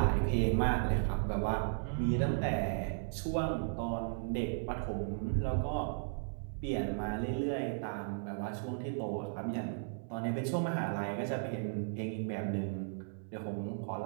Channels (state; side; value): silent; left; digital silence